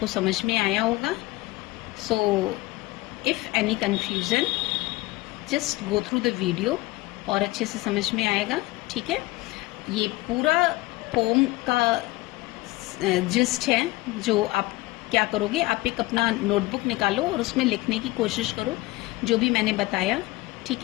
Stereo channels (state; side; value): quieter; right; 20.2 dB